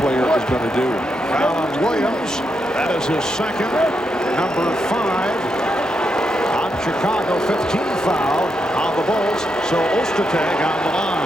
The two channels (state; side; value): normal; both; correlation 0.82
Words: is going to do. Foul on Williams. That is his second, number 5. Chicago, 15 foul on the Bulls, so Ostertag on the